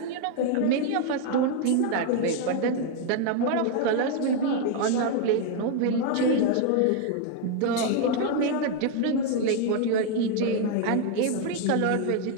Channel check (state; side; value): different; both; correlation 0.01